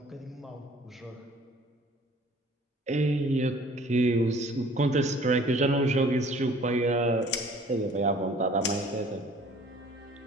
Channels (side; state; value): both; normal; correlation 0.52